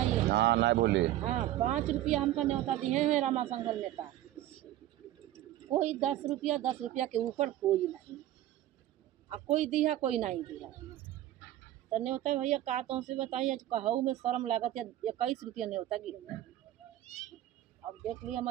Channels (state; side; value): quieter; left; 13.8 dB